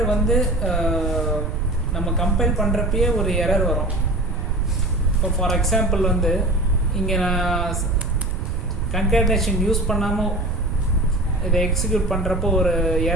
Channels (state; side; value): noise; right; rumble, 2 dB below the sound